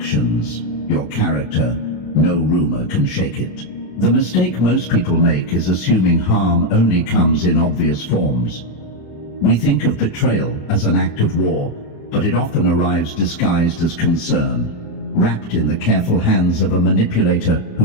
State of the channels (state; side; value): late; right; 27 ms